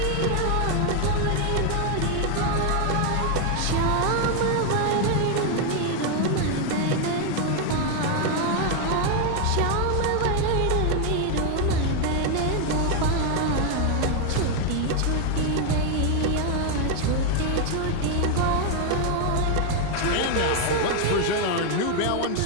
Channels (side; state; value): both; different; correlation 0.01